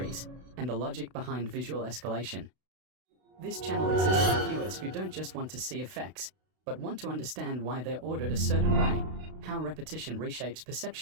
and the logic behind visual escalation. This channel exists for viewers who don't just want to see effects, but want to understand why they're ordered a certain way, how repetition reshapes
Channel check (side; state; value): left; late; 32 ms